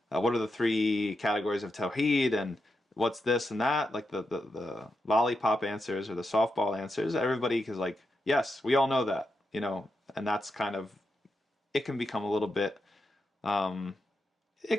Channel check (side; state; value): both; normal; correlation 0.86